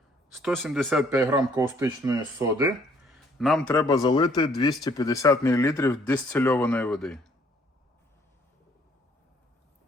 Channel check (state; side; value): normal; both; correlation 0.63